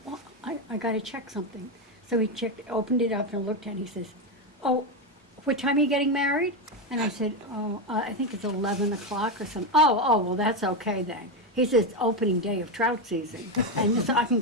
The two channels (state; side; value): normal; both; correlation 0.10